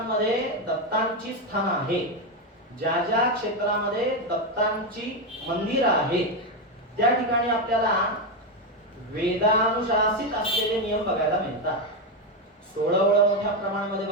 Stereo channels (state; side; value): normal; both; correlation 0.08